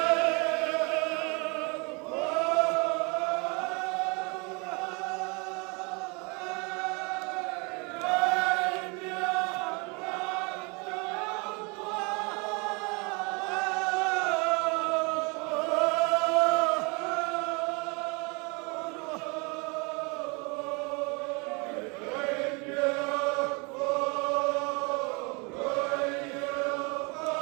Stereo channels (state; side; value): quieter; left; 30.4 dB